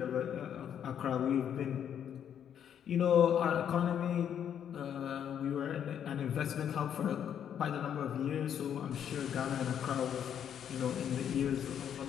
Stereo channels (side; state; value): right; quieter; 9.0 dB